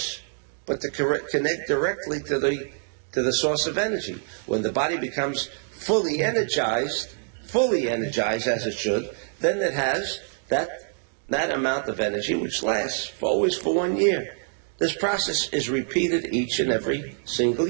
but to connect directly to the source of energy. When the body becomes fully energized as it should, then it has that amount of energy which lasts always for 1 year. This process is repeated each and every single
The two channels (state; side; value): silent; left; 61 dB below the other